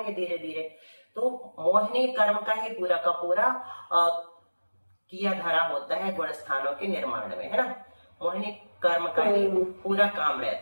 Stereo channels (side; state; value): both; inverted; correlation -1.00